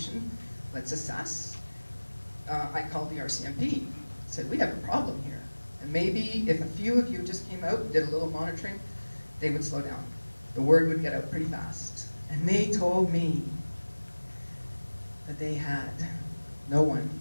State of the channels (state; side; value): inverted; both; correlation -1.00